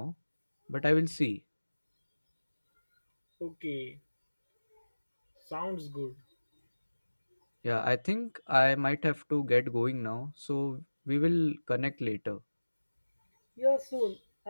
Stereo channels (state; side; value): inverted; both; correlation -1.00